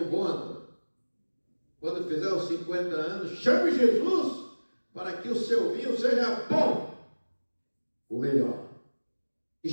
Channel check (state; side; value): inverted; both; correlation -1.00